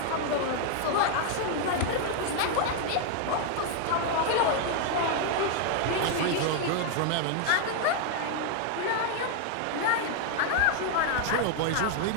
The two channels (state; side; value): different; both; correlation 0.00